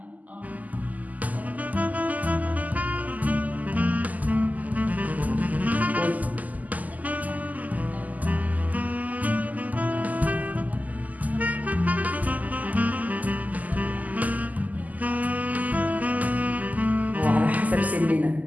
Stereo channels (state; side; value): late; left; 0.079 ms